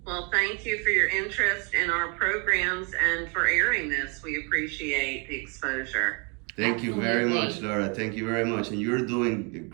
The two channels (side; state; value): left; quieter; 34.1 dB